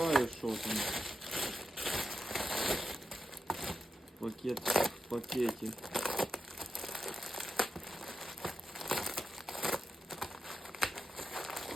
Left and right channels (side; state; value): both; normal; correlation 0.88